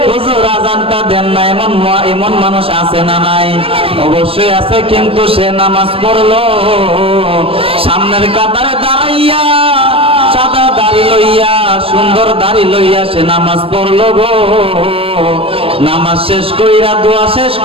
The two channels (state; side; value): late; left; 0.27 ms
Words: হুজুর আজানটা দেন না। এমন মানুষ আছে না নাই? অবশ্যই আছে, কিন্তু সে নামাজ পড়লো, সামনের কাতারে দাঁড়াইয়া সাদা দাড়ি লইয়া, সুন্দর দাড়ি লইয়া সে নামাজ পড়লো গো। নামাজ শেষ কইরা, দোয়া শেষ